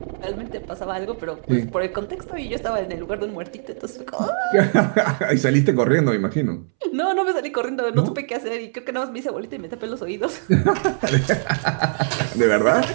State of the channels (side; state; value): left; silent; 64 dB below the other